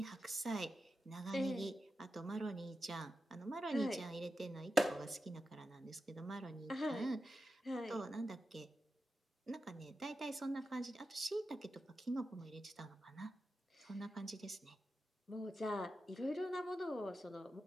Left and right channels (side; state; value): both; normal; correlation 0.90